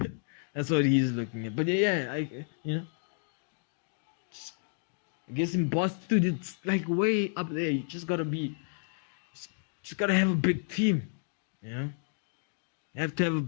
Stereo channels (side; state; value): right; silent; digital silence